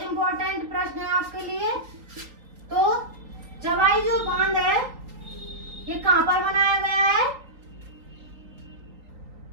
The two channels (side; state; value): left; late; 3.8 ms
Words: इंपॉर्टेंट प्रश्न है आपके लिए। तो जवाई जो बांध है ये कहाँ पर बनाया गया है?